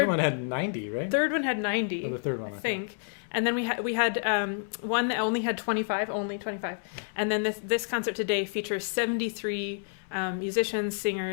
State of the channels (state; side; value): silent; right; digital silence